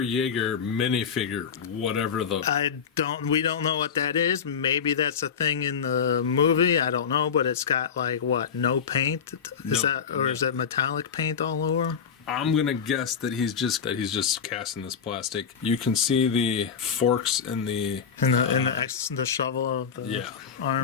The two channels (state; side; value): quieter; right; 6.9 dB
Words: minifigure, whatever the. We don't know what that is. Maybe that's a thing in the movie. I don't know, but it's got like what? No paint? Is that metallic paint all over? I'm gonna guess that he's just casting this plastic. You can see the forks in the shovel of the